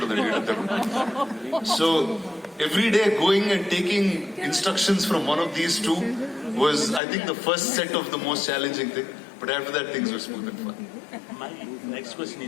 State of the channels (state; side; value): drops out; right; at 7.0 s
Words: వీళ్ళిద్దరు. So every day going and taking instructions from one of these two was, I think, the first set of the most challenging thing. But after that, things were smooth and fun. My next question